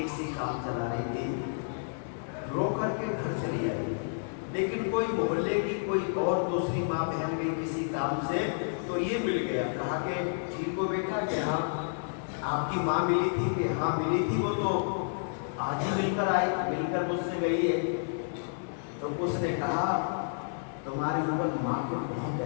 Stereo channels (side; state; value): right; silent; 58 dB below the other